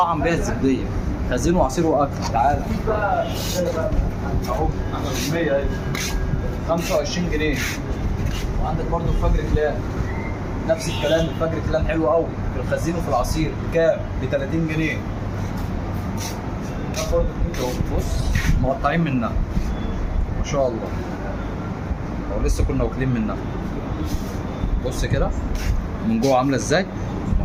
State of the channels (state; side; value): identical; both; correlation 1.00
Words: بيها الزبديه، خزين وعصير واكل. تعالى اهو 100 25 جنيه. وعندك برضو الفجر كلام، نفس الكلام، الفجر كلام حلو قوي في الخزين وفي العصير. كام؟ ب 30 جنيه. برضو بص مقطعين منها ما شاء الله، او لسه كنا واكلين منها. بص كده من جوه عامله ازاي ما